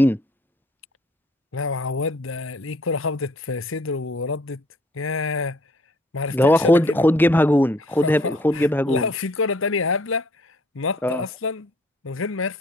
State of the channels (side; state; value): both; normal; correlation 0.60